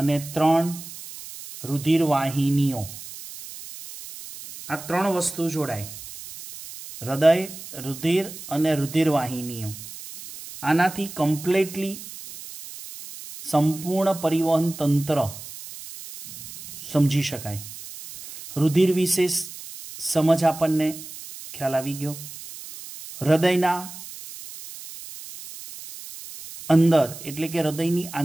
3 रुधिर वाहिनीओ, आ 3 वस्तु जोड़ाय। हृदय, रुधिर अने रुधिर वाहिनीओ, आनाथी कम्प्लीटली संपूर्ण परिवहन तंत्र समझी शकाय। रुधिर विशे समझ आपणने ख्याल आवी गयो। हृदयना अंदर एटले के हृदयनी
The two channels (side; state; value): right; noise; hiss, 13 dB below the sound